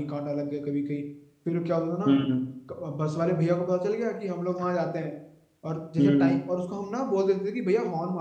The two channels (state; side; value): identical; both; correlation 1.00